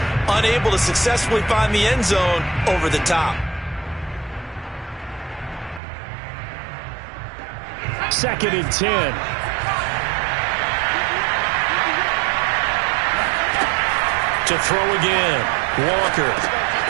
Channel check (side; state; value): left; drops out; at 5.8 s